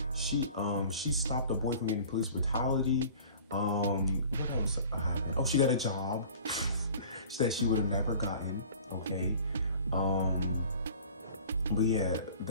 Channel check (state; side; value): inverted; both; correlation -0.45